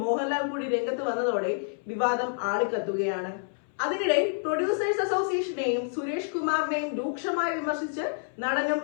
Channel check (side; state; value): right; silent; 59 dB below the other